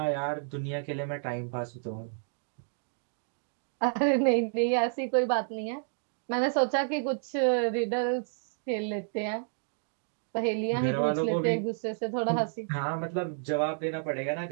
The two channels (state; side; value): silent; left; digital silence